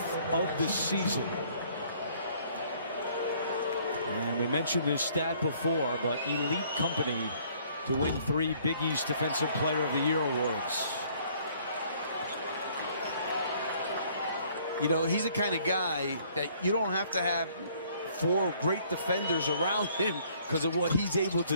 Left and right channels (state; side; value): inverted; both; correlation -0.60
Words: of the season. And we mentioned this stat before, but elite company to win 3 Big East Defensive Player of the Year awards. You know, he's the kind of guy that you don't have to have 4 great defenders around him because of what he's able